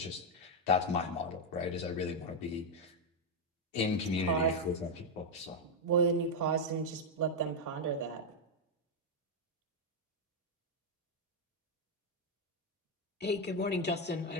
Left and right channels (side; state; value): both; normal; correlation 0.01